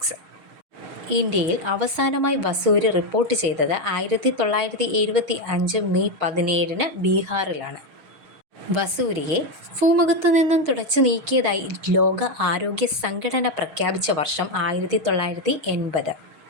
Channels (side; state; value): left; late; 6.4 ms